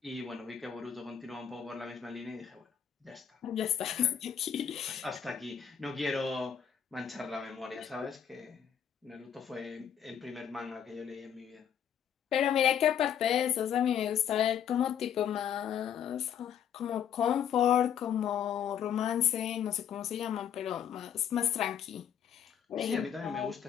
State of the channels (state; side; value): quieter; right; 8.7 dB